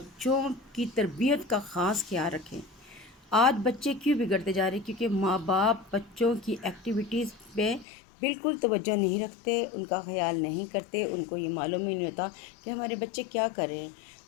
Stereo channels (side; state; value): right; drops out; at 7.9 s